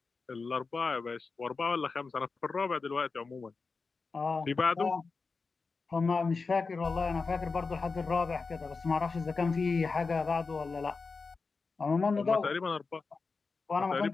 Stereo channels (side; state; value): right; quieter; 4.4 dB